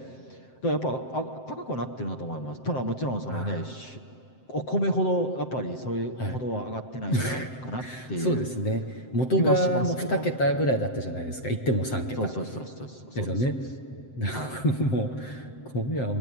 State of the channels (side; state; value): right; late; 7.7 ms